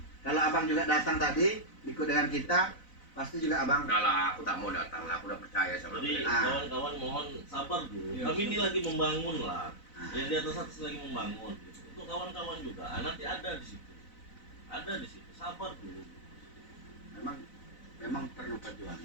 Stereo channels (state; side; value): late; right; 4.0 ms